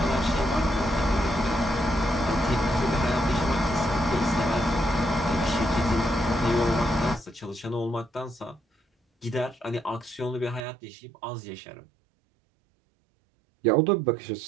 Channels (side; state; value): left; drops out; at 10.7 s